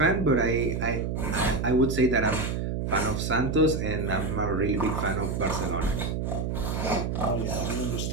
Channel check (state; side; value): noise; right; hum, 1 dB below the sound